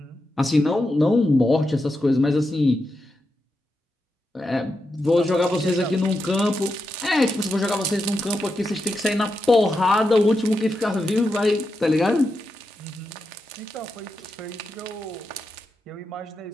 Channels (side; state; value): both; normal; correlation 0.87